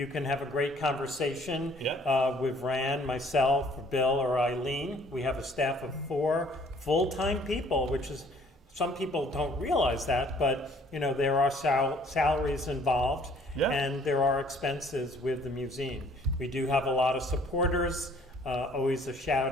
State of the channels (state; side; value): normal; both; correlation 0.58